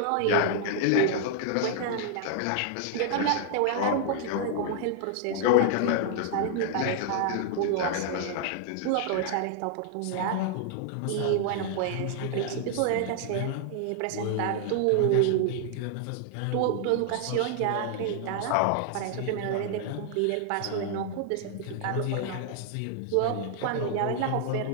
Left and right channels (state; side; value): different; both; correlation 0.00